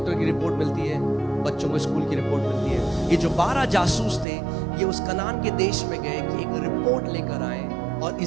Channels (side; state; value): left; drops out; at 4.2 s